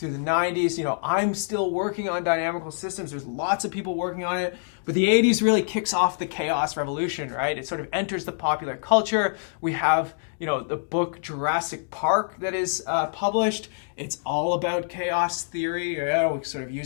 the 90s. I'm still working on dynamical systems. There's lots of people working on it. But the 80s really kicks off the chaos revolution, right? It sort of enters the popular culture. We have, the book Jurassic Park that is published. It's all about chaos theory. It sort of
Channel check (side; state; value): right; silent; digital silence